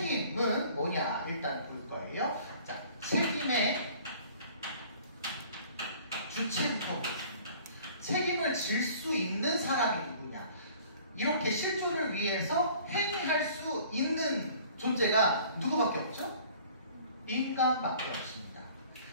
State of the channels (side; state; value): both; inverted; correlation -0.51